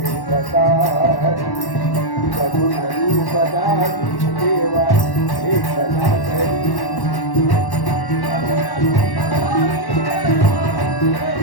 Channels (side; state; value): right; late; 1.1 ms